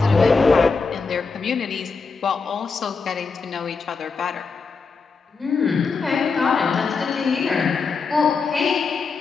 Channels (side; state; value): right; quieter; 4.7 dB